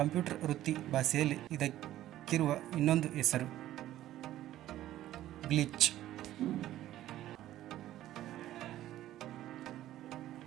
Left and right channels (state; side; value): quieter; left; 13.7 dB